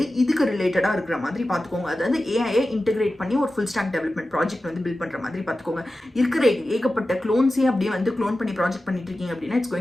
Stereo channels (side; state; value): both; normal; correlation 0.94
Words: இதுக்கு ரிலேட்டடாக இருக்கிற மாதிரி பார்த்துக்கோங்க. அதாவது ஏஐயை இன்டெகிரேட் பண்ணி ஒரு ஃபுல் ஸ்டாக் டெவலப்மெண்ட் ப்ராஜெக்ட் வந்து பில்ட் பண்ணுற மாதிரி பார்த்துக்கோங்க. இருக்கிற ஏகப்பட்ட க்ளோன்ஸே அப்படியே வந்து க்ளோன் பண்ணி ப்ராஜெக்ட் பண்ணிட்டு இருக்கீங்க அப்படின்னா it's